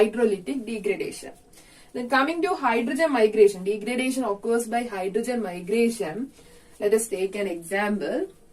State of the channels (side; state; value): both; identical; correlation 1.00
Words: degradation. Then coming to hydrogen migration, degradation occurs by hydrogen migration. Let us take an example.